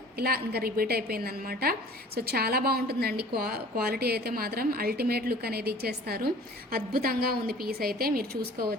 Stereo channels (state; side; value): normal; both; correlation 0.47